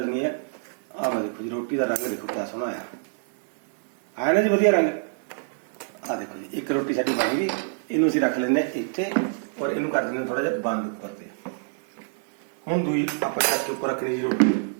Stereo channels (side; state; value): left; silent; digital silence